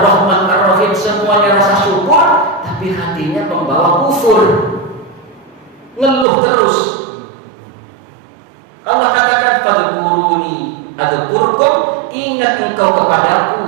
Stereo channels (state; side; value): drops out; left; at 6.2 s